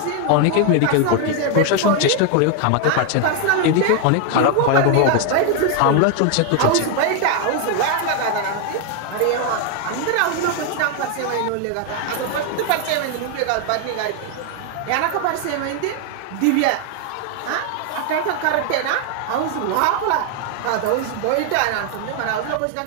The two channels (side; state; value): both; different; correlation 0.01